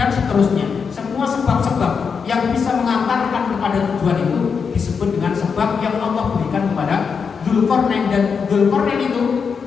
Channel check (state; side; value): quieter; right; 5.9 dB